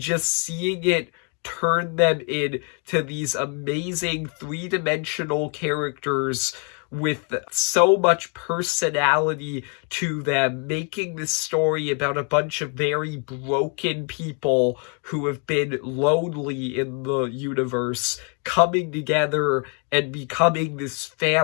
seeing it turn them into these amazing three-dimensional characters with so much personality to them, making this story about a bunch of very broken people who have been lonely in the universe, coming together and becoming this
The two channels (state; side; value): quieter; right; 38.8 dB